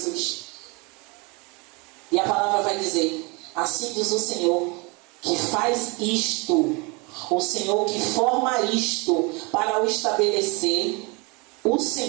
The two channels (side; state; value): left; quieter; 28.6 dB